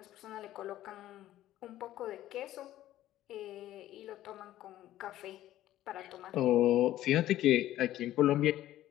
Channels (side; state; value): right; quieter; 13.8 dB